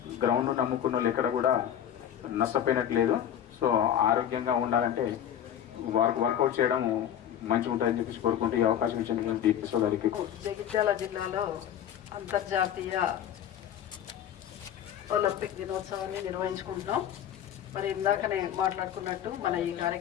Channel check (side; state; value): right; quieter; 10.1 dB